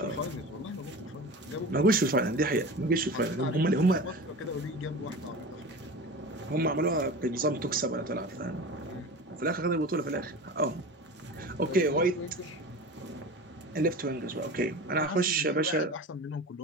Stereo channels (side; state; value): both; normal; correlation 0.32